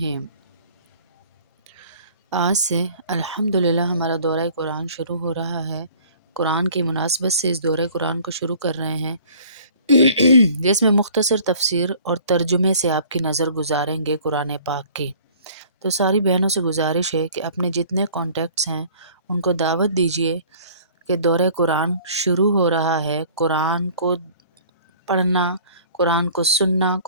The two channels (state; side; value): inverted; both; correlation -0.51